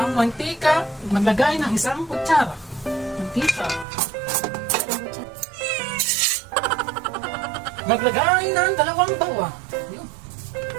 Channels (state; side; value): drops out; left; at 3.9 s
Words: mantika. Maglagay ng isang kutsara. Mantika. Maglagay ng 2 bawang. Yun.